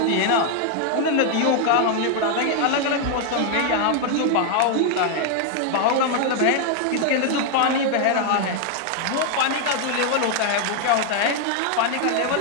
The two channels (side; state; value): both; different; correlation 0.00